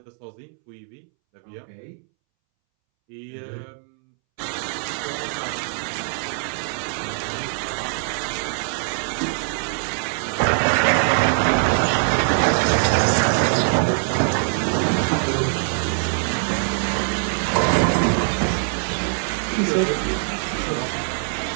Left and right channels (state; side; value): silent; left; 64 dB below the other